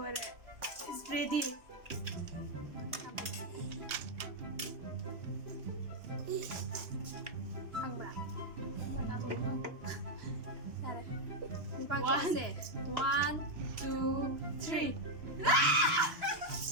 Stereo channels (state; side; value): late; left; 3.1 ms